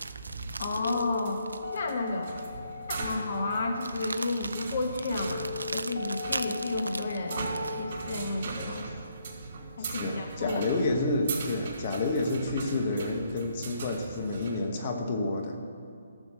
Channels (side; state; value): both; inverted; correlation -0.72